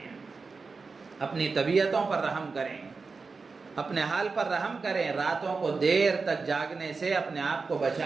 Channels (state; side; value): quieter; left; 4.5 dB